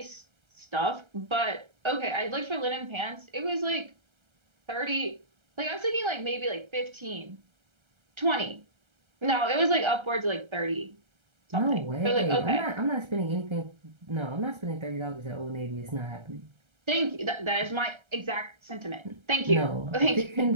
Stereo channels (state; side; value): late; left; 1.3 ms